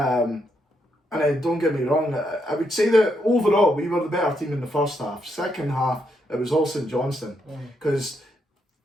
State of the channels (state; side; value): normal; both; correlation 0.78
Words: don't get me wrong, I would say that overall we were the better team in the first half. Second half, it was all St Johnstone.